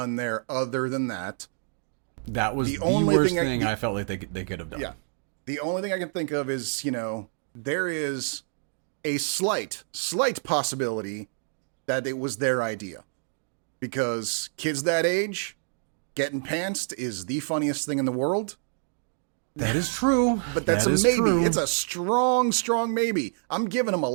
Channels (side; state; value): left; silent; digital silence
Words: there other than that. That was The the only worst thing thing I felt like they could have done. yeah, the only thing I can think of is, there is a slight possibility that it was their idea, because kids that age getting pantsed is the funniest thing in the world. That is true. But that's That a is maybe. true. It's a strong maybe. I'm giving them a